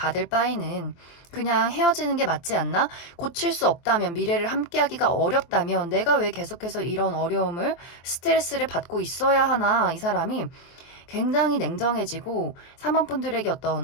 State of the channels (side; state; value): right; late; 23 ms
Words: 바에는 그냥 헤어지는 게 맞지 않나? 고칠 수 없다면, 미래를 함께하기가 어렵다면 내가 왜 계속해서 이런 어려움을, 스트레스를 받고 있어야 하나? 이 사람이 굉장히 냉정해지고 3번 분들에게